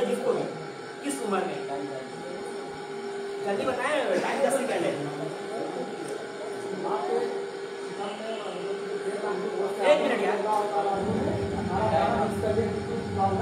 जिसको भी किस उम्र में? जल्दी बताएं, टाइम 10 सेकंड है। 1 मिनट यार।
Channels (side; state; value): both; identical; correlation 1.00